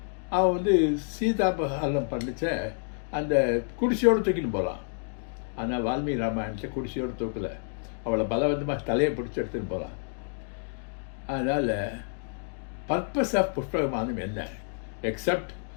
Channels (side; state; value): right; silent; digital silence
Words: அவன் வந்து சீதாபஹரணம் பண்ணிச்ச அந்த குடிசையோடு தூக்கின்னு போகலாம். ஆனால் வால்மீகி ராமாயணத்தில் குடிசையோடு தூக்கலை, அவளை பலவந்தமாக தலையை பிடிச்சி எடுத்துன்னு போகலாம். அதனால் பர்பஸ் ஆஃப் புஷ்ப விமானம் என்ன? எக்ஸப்ட்